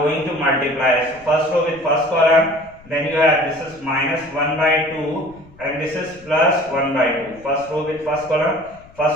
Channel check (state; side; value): noise; left; rumble, 24 dB below the sound